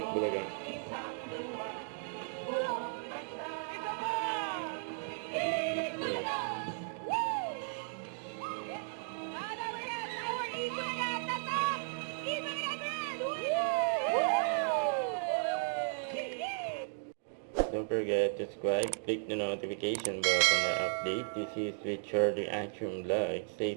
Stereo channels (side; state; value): left; silent; digital silence